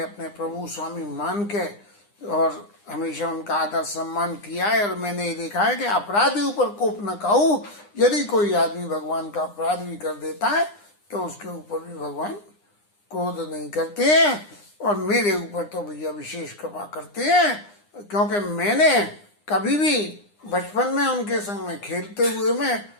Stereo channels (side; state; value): right; late; 9.8 ms